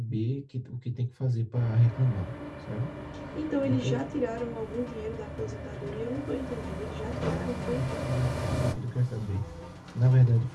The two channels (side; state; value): both; identical; correlation 1.00